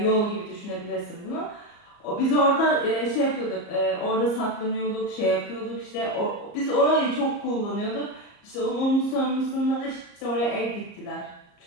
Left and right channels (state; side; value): late; right; 34 ms